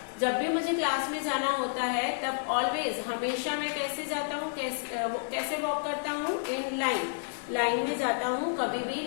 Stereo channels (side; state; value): right; silent; digital silence